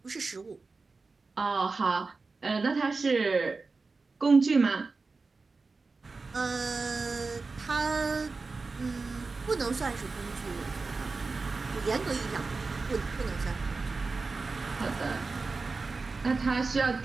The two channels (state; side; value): quieter; left; 4.0 dB